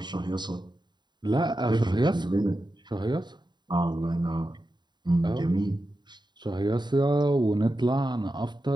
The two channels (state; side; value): late; left; 0.21 ms